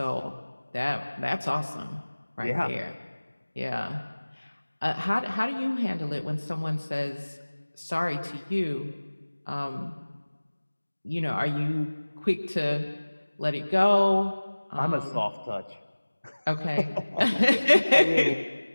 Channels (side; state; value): both; inverted; correlation -1.00